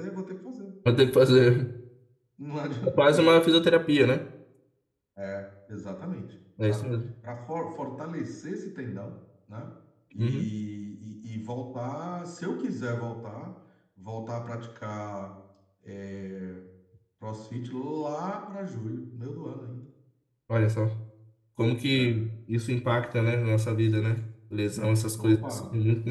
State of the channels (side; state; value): both; identical; correlation 1.00